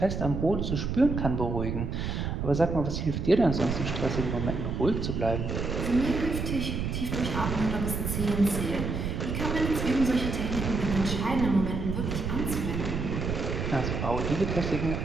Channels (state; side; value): noise; right; rumble, 2 dB below the sound